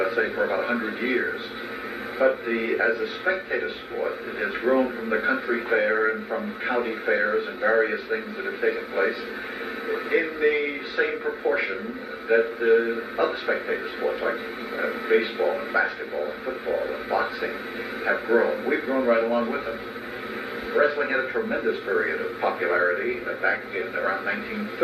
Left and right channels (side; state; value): both; identical; correlation 1.00